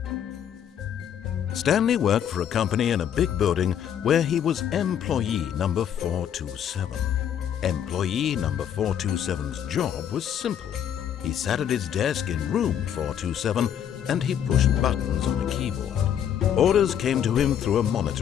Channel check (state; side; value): quieter; right; 9.3 dB